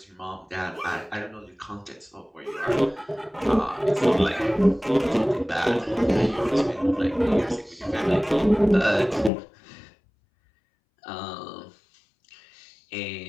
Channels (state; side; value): drops out; right; at 9.3 s